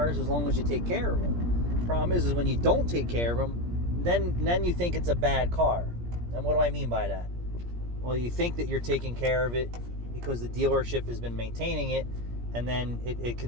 as long as you take care of them. The problem is when you don't take care of them, then you think it's a bad car. And what do I mean by that? Well, you think that you're taking care of it because the dealership has been maintaining it, and then it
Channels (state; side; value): late; left; 17 ms